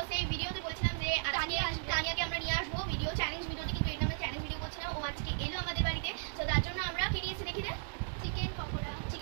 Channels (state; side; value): silent; left; digital silence